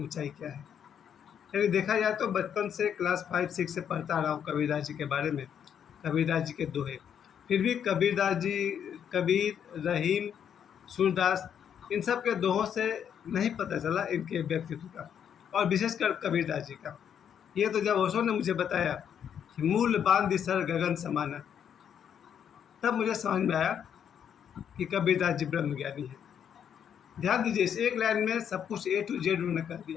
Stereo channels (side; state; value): right; quieter; 8.5 dB